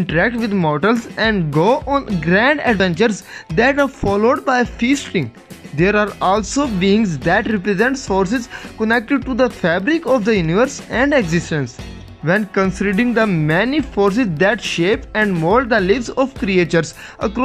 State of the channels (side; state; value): both; identical; correlation 1.00